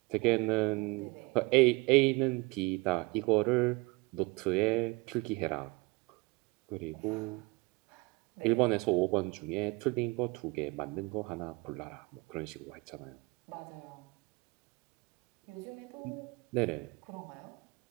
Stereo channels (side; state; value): left; quieter; 25.0 dB